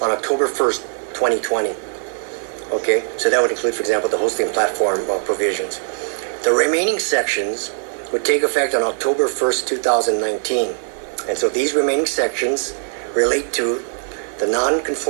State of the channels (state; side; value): silent; left; digital silence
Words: on October 1st, 2020. Okay, so that would include, for example, the hosting platform provisions. The remaining sections would take effect on October 1st, 2019. And so these remaining sections relate to the